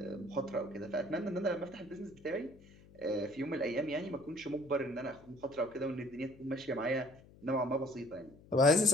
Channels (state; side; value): noise; left; hum, 23 dB below the sound